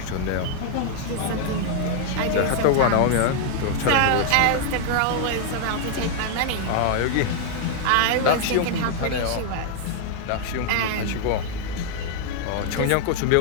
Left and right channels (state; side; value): different; both; correlation 0.00